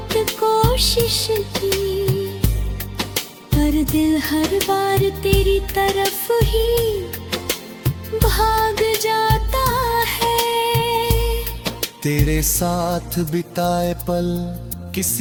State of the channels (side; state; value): both; identical; correlation 1.00